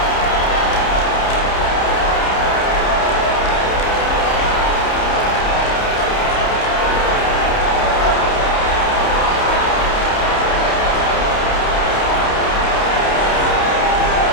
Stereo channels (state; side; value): late; right; 30 ms